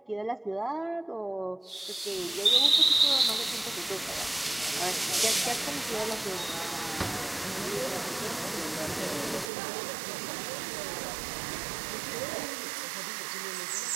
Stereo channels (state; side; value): drops out; left; at 9.5 s